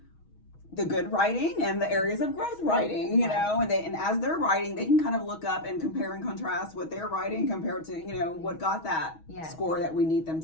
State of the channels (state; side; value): late; right; 6.3 ms